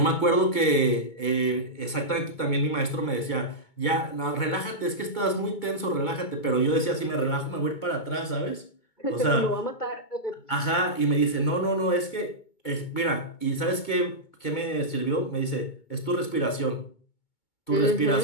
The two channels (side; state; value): right; late; 2.2 ms